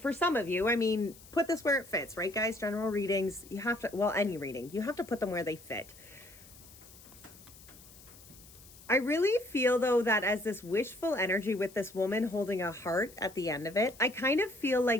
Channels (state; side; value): noise; left; hiss, 21 dB below the sound